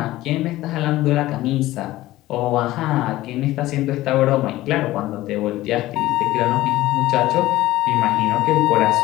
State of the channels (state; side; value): quieter; right; 16.5 dB